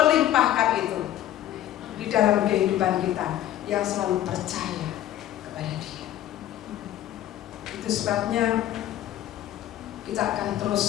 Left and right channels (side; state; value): right; quieter; 12.6 dB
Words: itu di dalam kehidupan kita yang selalu percaya kepada Dia. Itu sebabnya kita akan terus